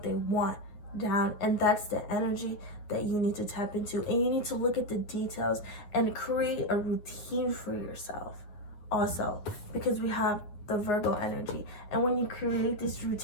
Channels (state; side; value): late; right; 9.3 ms